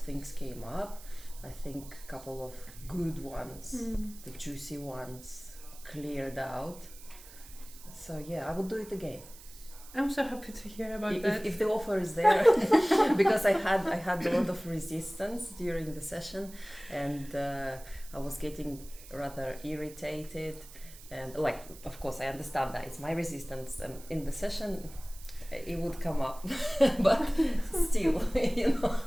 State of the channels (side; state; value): right; noise; hiss, 18 dB below the sound